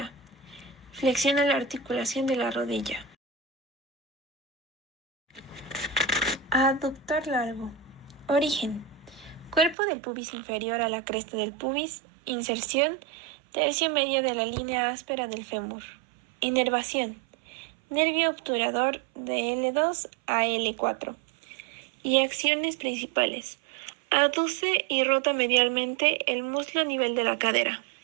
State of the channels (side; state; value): left; drops out; at 9.8 s